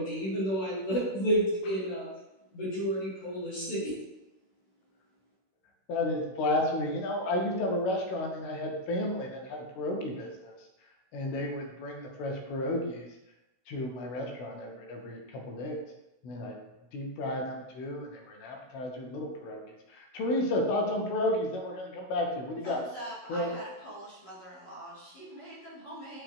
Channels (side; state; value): right; late; 16 ms